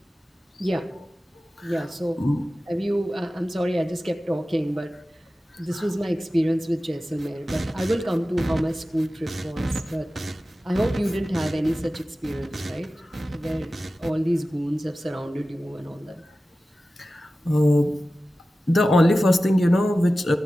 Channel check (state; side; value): normal; both; correlation 0.95